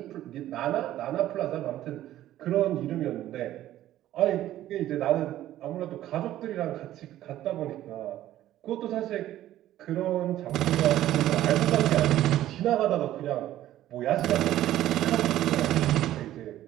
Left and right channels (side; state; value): left; quieter; 13.5 dB